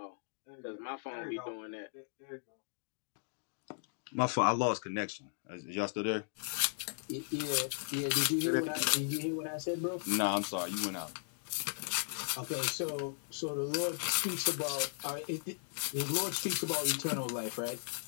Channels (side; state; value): right; silent; digital silence